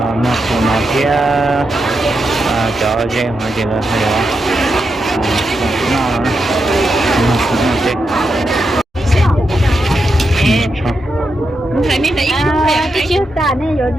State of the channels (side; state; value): both; normal; correlation 0.85